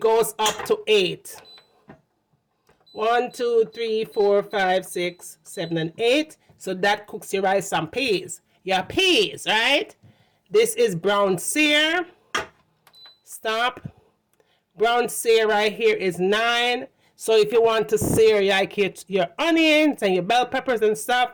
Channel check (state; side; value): identical; both; correlation 1.00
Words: up to 8. 1, 2, 3, 4, 5, 6, 7, and 8. So that cooks your rice and peas. Your peas, right? This is brown sear. Stop. Brown sear right here is 9. So if you want to sear like your onions and your bell peppers and